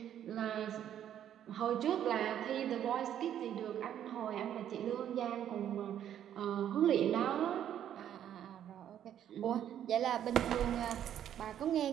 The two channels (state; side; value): quieter; left; 10.3 dB